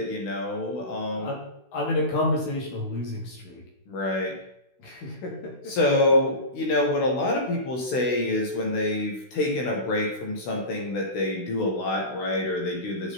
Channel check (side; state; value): right; late; 16 ms